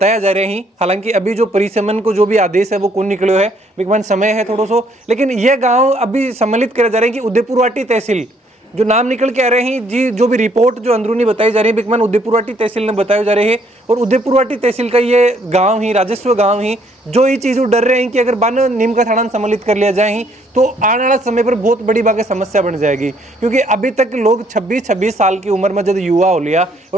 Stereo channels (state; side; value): normal; both; correlation 0.66